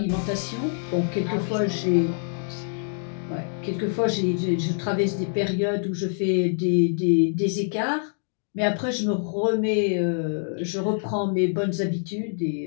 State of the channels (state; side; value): silent; right; digital silence